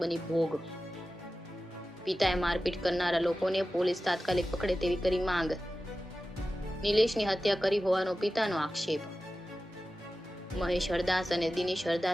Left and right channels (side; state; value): both; normal; correlation 0.94